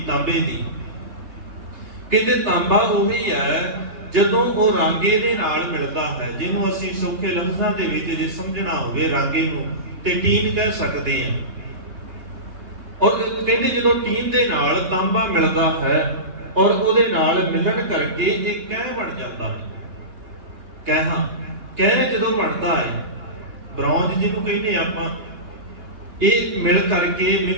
ਤਾਂਬੇ ਦੀ, ਕਹਿੰਦੇ ਤਾਂਬਾ ਉਹੀ ਹੈ ਜਦੋਂ ਉਹ ਰਾਂਗੇ ਦੇ ਨਾਲ ਮਿਲਦਾ ਹੈ, ਜਿਹਨੂੰ ਅਸੀਂ ਸੌਖੇ ਲਫ਼ਜ਼ਾਂ ਦੇ ਵਿੱਚ ਜੇ ਸਮਝਣਾ ਹੋਵੇ ਰਾਂਗੇ ਨੂੰ ਤੇ ਟੀਨ ਕਹਿ ਸਕਦੇ ਹਾਂ। ਔਰ ਕਹਿੰਦੇ ਜਦੋਂ ਟੀਨ ਦੇ ਨਾਲ ਤਾਂਬਾ ਮਿਲਦਾ ਹੈ ਔਰ ਉਹਦੇ ਨਾਲ ਮਿਲਣ ਕਰਕੇ ਇਹ ਕਹਿ ਬਣ ਜਾਂਦਾ ਹੈ। ਕਹਿ ਜਦੋਂ ਬਣਦਾ ਹੈ, ਬ੍ਰੌਂਜ ਜਿਹਨੂੰ ਕਹਿੰਦੇ ਆਪਾਂ, ਇਹ ਮਿਲ ਕਰਕੇ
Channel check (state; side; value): late; left; 2.8 ms